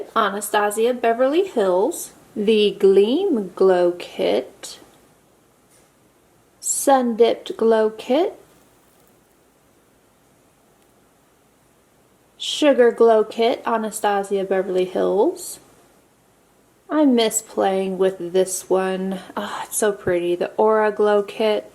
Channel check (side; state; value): both; identical; correlation 1.00